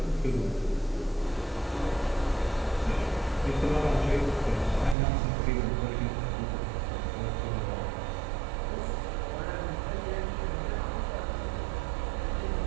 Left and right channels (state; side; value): drops out; left; at 5.0 s